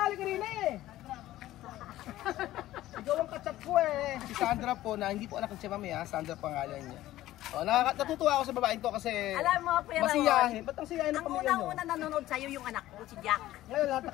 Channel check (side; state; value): right; quieter; 15.0 dB